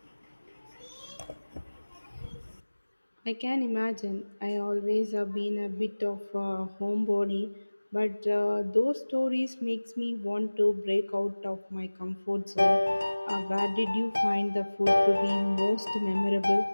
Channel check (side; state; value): both; inverted; correlation -1.00